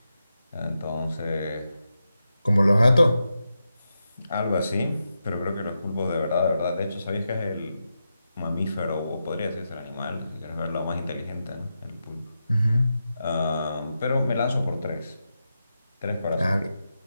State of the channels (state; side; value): inverted; both; correlation -0.88